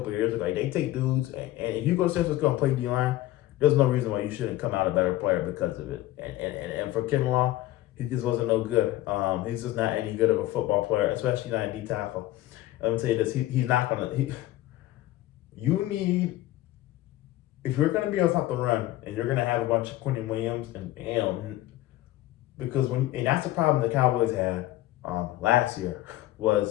of years ago. Like, they take dudes, and if you go to San Francisco and play D line, there's no reason why you shouldn't come out a better player because of it. And for Kinlaw, he just wasn't no good. He's just not any good of a football player, especially not a D tackle. Let me tell you this: he's not gonna. You need, if you're gonna be able to stop the run, and you're gonna have a bunch of Quentin Williams and because and that's the problem the Cowboys had last year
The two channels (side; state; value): right; quieter; 15.6 dB